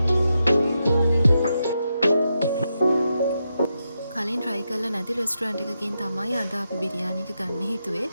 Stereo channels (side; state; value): both; inverted; correlation -0.85